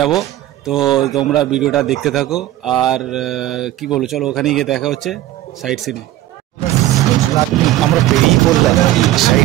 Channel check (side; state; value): left; quieter; 14.8 dB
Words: তো তোমরা ভিডিওটা দেখতে থাকো। আর কি বলো, চলো ওখানে গিয়ে দেখা হচ্ছে সাইট সিনে। আমরা বেরিয়ে পড়লাম